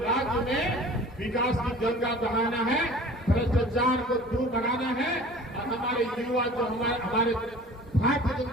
में विकास की गंगा बहाना है, भ्रष्टाचार को दूर भगाना है और हमारे युवा जो हमारे भारतीय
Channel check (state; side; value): normal; both; correlation 0.44